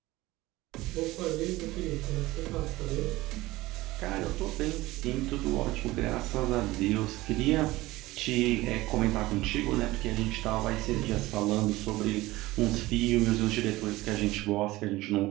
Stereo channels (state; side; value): quieter; left; 18.7 dB